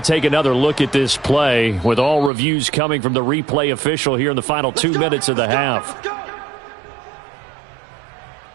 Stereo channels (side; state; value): left; drops out; at 2.3 s